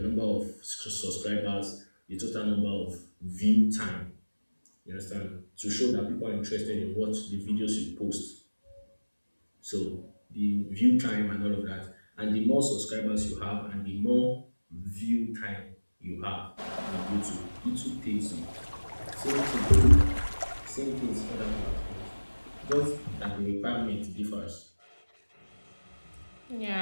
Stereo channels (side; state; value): both; inverted; correlation -1.00